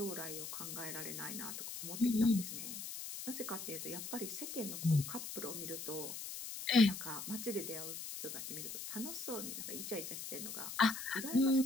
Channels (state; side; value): noise; left; hiss, 7 dB below the sound